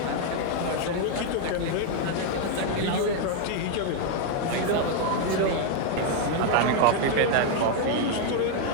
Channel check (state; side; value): different; both; correlation 0.00